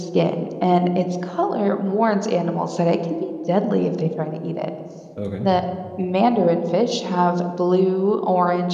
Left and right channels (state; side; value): identical; both; correlation 1.00